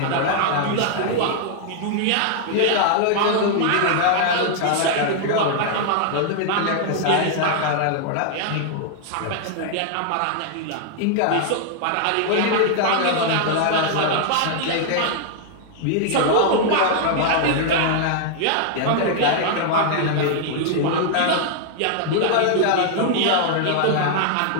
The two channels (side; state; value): both; different; correlation 0.00